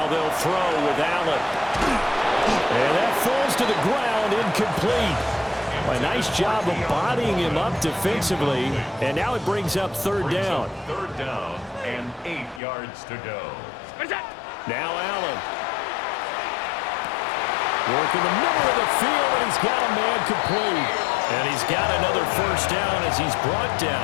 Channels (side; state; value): right; drops out; at 12.6 s